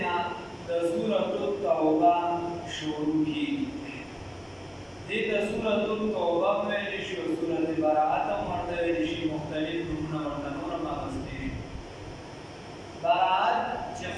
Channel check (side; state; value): both; identical; correlation 1.00